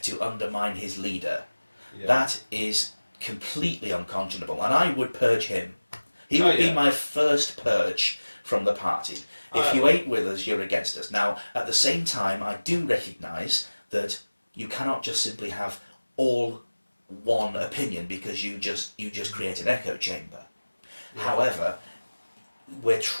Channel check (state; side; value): inverted; both; correlation -1.00